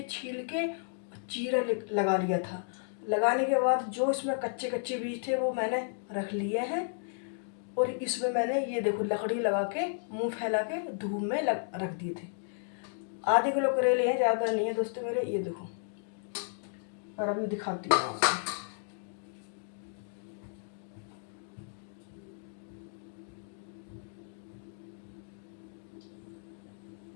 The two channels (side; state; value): right; silent; digital silence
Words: के चीरा लगा लिया था। लगाने के बाद जो इसमें कच्चे कच्चे बीज थे वो मैंने रख लिए हैं। और इसमें मैंने ये देखो लकड़ी लगा के मुंह फैला के धूप में रख दिए थे। आधे किलो करेले हैं, ज़्यादा नहीं है दोस्तों मेरे। ये देखो, और अभी दिखाती हूँ आपको।